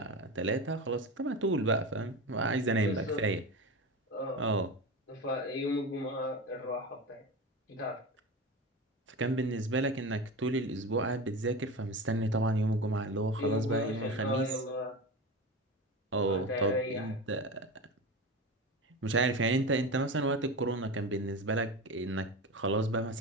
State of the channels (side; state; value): both; normal; correlation 0.25